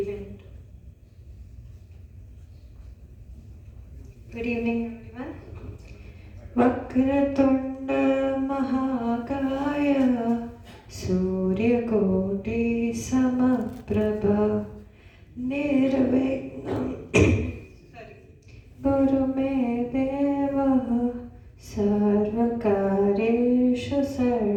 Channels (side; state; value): both; identical; correlation 1.00